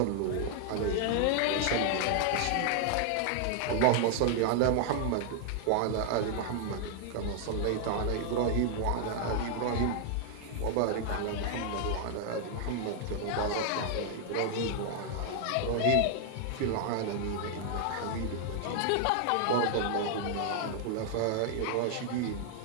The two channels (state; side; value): different; both; correlation 0.00